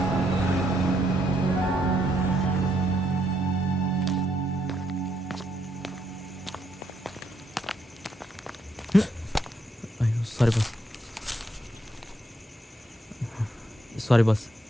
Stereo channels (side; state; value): both; normal; correlation 0.75